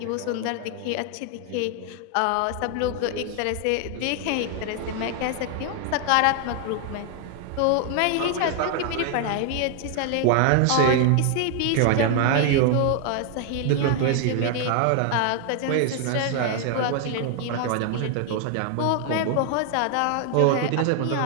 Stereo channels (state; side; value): different; both; correlation 0.00